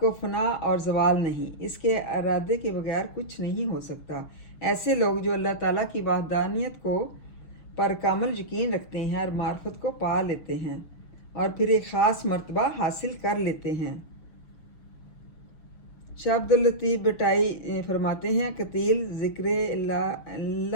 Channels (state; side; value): late; right; 6.5 ms